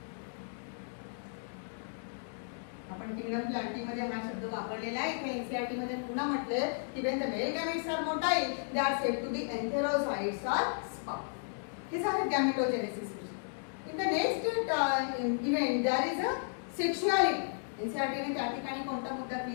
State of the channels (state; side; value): silent; right; digital silence